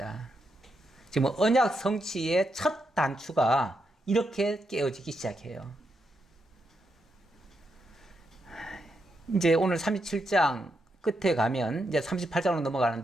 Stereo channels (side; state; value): both; normal; correlation 0.82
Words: 지금 언약 성취의 첫 단추가 이렇게 깨어지기 시작해요. 이제 오늘 37장 끝에 가면 이제 38장으로